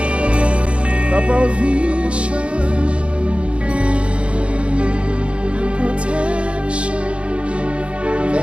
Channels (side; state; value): left; late; 0.060 ms